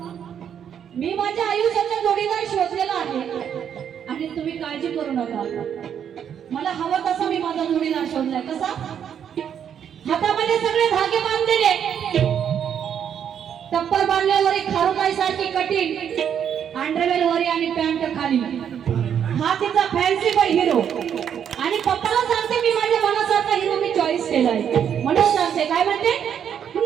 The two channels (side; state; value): left; quieter; 8.6 dB